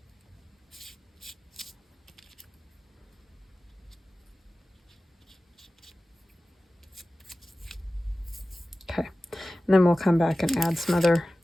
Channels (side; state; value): both; normal; correlation 0.96